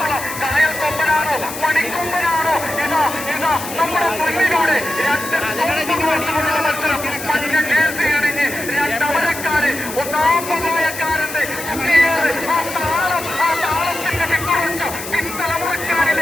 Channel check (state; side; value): noise; left; hiss, 10 dB below the sound